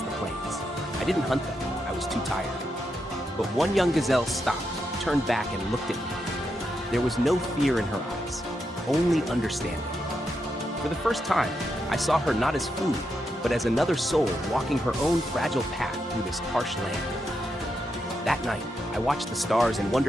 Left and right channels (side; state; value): both; normal; correlation 0.84